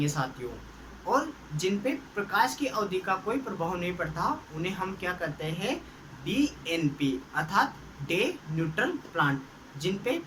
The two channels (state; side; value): identical; both; correlation 1.00